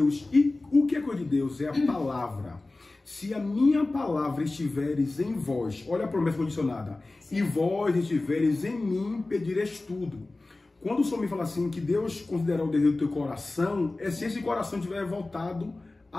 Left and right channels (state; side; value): quieter; right; 3.1 dB